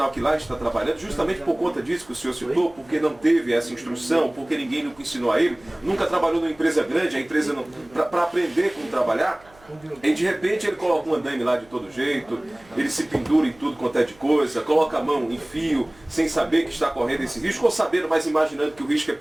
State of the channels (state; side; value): noise; right; hum, 27 dB below the sound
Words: que lá está trabalhando, justamente por conta disso que o senhor citou, porque não teve essa instrução, porque ninguém nunca ensinou a ele, nunca trabalhou numa empresa grande, a empresa não, para aprender como trabalhar, e de repente ele coloca um andaime lá de todo jeito, ele se pendura em tudo quanto é de coisa, coloca a mão em fio, sem saber que está correndo esse risco, ou sabendo, mas imaginando que o risco é